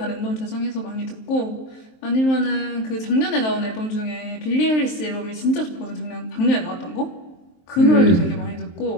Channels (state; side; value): late; right; 23 ms